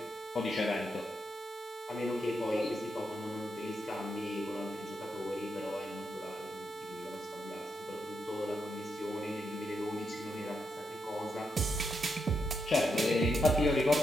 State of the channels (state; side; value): normal; both; correlation 0.82